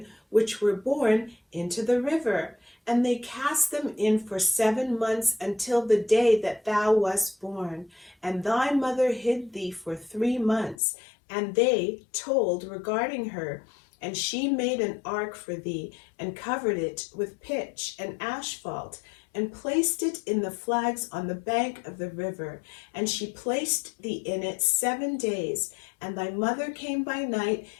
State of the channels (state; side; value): drops out; right; at 10.8 s